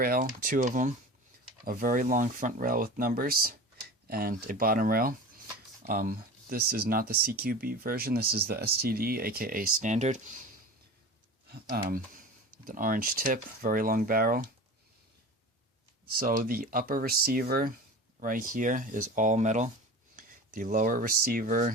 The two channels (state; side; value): normal; both; correlation 0.34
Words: 2 of them, a very long front rail with numbers, and a bottom rail. This is not the CQB version, this is the STD, aka standard. With an orange tip, very long barrel. So the upper receiver right here is all metal. The lower